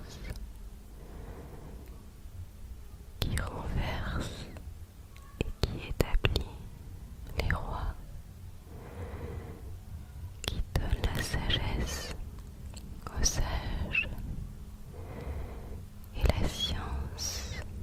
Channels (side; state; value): both; identical; correlation 1.00